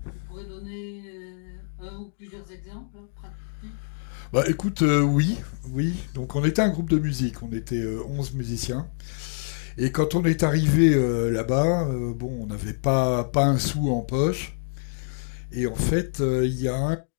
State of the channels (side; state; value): right; silent; digital silence